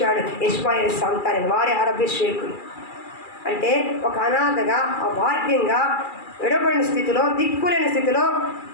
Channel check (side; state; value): right; late; 2.4 ms